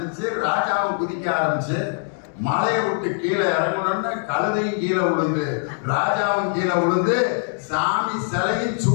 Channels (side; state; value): right; silent; 64 dB below the other